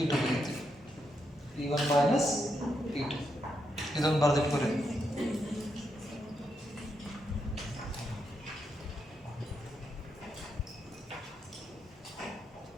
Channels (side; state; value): both; normal; correlation 0.81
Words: E2 ಬರೀತೀವಿ. E1 minus E2 ಇದನ್ನು ಬರೆದಿಟ್ಕೊರಿ.